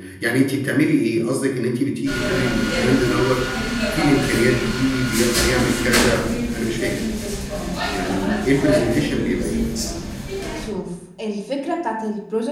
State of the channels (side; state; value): both; identical; correlation 1.00